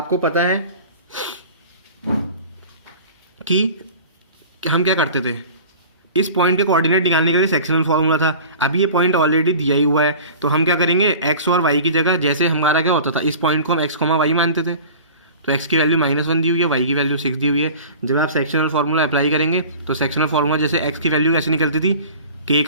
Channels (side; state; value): both; inverted; correlation -0.39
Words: पता है कि हम क्या करते थे, इस पॉइंट के कोऑर्डिनेट निकालने के लिए सेक्शनल फॉर्मूला था। अभी ये पॉइंट ऑलरेडी दिया ही हुआ है, तो हम क्या करेंगे, एक्स और वाई की जगह, जैसे हमारा क्या होता था, इस पॉइंट को हम एक्स कॉमा वाई मानते थे, तो एक्स की वैल्यू -1 दी हुई है, वाई की वैल्यू 6 दी हुई है। जब आप सेक्शनल फार्मूला अप्लाई करेंगे तो सेक्शनल फार्मूला जैसे एक्स की वैल्यू कैसे निकलती थी, के